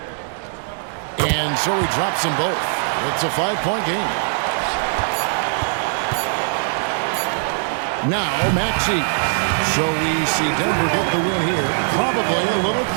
And so he drops them both. It's a 5-point game. Now, Maxey. So we see Denver get the win here. Probably a little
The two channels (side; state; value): left; silent; digital silence